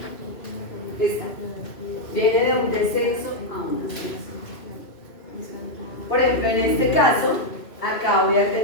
Esta viene de un descenso a un ascenso. Por ejemplo, en este caso, acá voy a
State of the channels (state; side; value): late; right; 2.6 ms